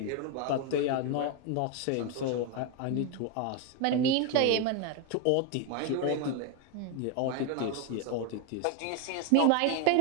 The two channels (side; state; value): both; different; correlation 0.01